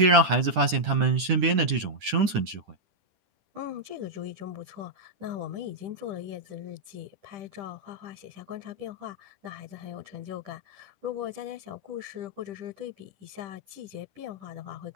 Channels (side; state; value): left; late; 10 ms